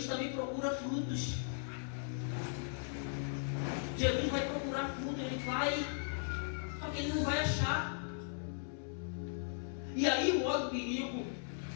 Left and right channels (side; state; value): right; silent; 53 dB below the other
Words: também procura frutos. Jesus vai procurar fruto, ele vai, só que ele não vai achar. E aí mora o perigo.